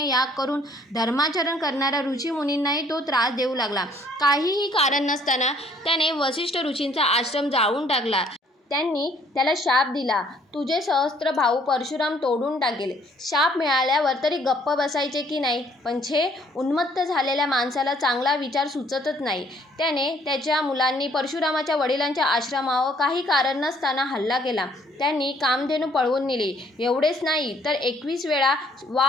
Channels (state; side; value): normal; both; correlation 0.62